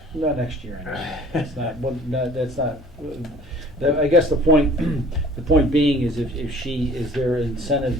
Not next year, I know. That's not, well, no, that's not, I guess the point, the point being is if she, is there incentive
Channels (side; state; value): both; normal; correlation 0.51